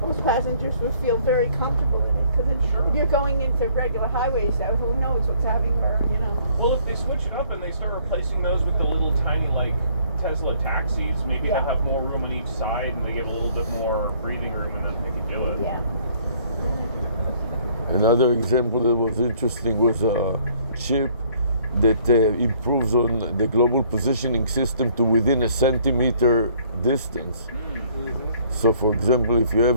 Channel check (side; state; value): both; inverted; correlation -0.61